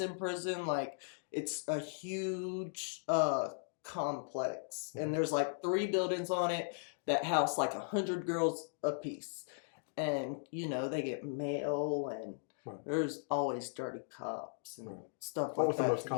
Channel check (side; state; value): right; silent; digital silence